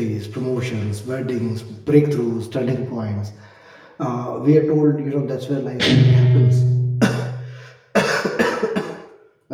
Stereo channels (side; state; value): both; identical; correlation 1.00